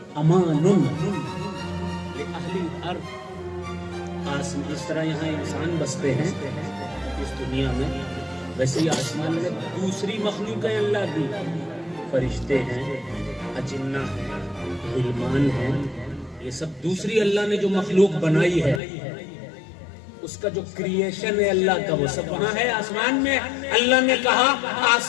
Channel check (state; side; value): drops out; right; at 18.8 s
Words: أَمَانٌ لِأَهْلِ الْأَرْضِ۔ اس طرح یہاں انسان بستے ہیں اس دنیا میں، ویسے ہی آسمان میں دوسری مخلوق ہے اللہ کی، فرشتے ہیں، اجنہ ہیں، غلمان ہیں، یہ سب دوسری اللہ نے جو مخلوق بنائی ہے، اس کا جو کریشن ہے اللہ کا، وہ سب وہاں ہے آسمان میں۔ اللہ نے کہا